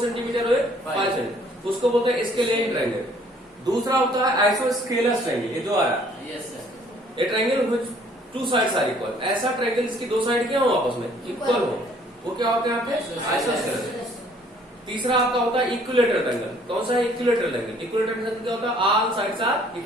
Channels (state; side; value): normal; both; correlation 0.60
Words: सेंटीमीटर हो, 5 सेंटीमीटर, उसको बोलते हैं स्केलियन ट्रायंगल। दूसरा होता है आइसोस्केलस ट्रायंगल, ये जो आ रहा है ये triangle which two sides are equal. ऐसा ट्रायंगल जिसकी दो साइड क्या हो? आपस में इक्वल हो, वो क्या होता है यहाँ पे? आइसोस्केलस। तीसरा आपका होता है इक्विलेटरल ट्रायंगल। कौन सा है? Equilateral triangle. इक्विलेटरल ट्रायंगल क्या होता है? All sides are